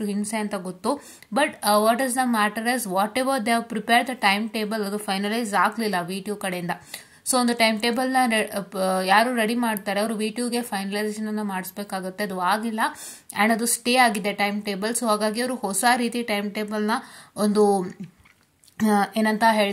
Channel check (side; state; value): both; identical; correlation 1.00